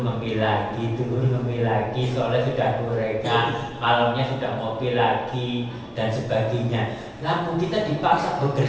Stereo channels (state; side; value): identical; both; correlation 1.00